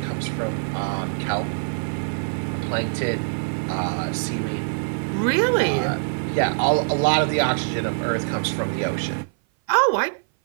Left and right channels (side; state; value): left; silent; 57 dB below the other